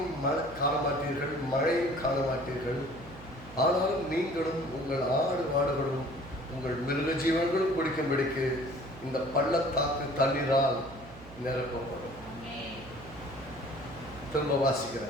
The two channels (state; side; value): noise; right; hum, 17 dB below the sound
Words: காண மாட்டீர்கள், மழையும் காண மாட்டீர்கள். ஆனாலும் நீங்களும் உங்கள் ஆடு மாடுகளும் உங்கள் மிருக ஜீவன்களும் குடிக்கும்படிக்கு இந்த பள்ளத்தாக்கு தண்ணீரால் நிரப்பப்படும். திரும்ப